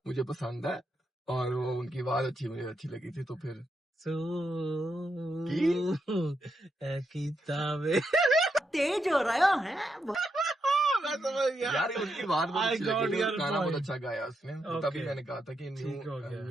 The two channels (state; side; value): normal; both; correlation 0.82